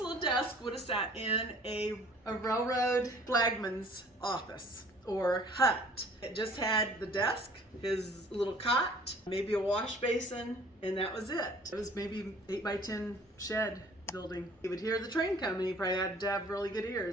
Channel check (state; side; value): normal; both; correlation 0.52